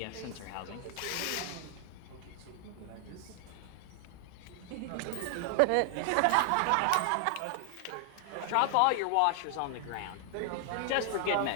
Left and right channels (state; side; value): different; both; correlation 0.00